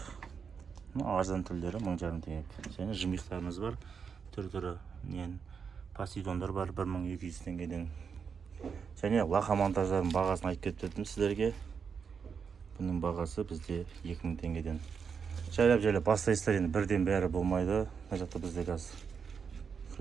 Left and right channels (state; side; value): quieter; left; 6.2 dB